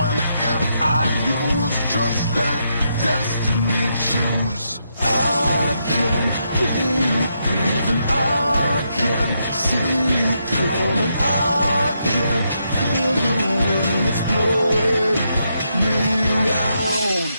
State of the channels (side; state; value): both; inverted; correlation -0.80